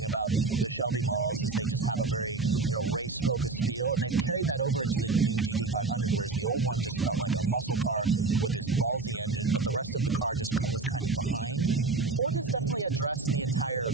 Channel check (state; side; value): quieter; left; 3.9 dB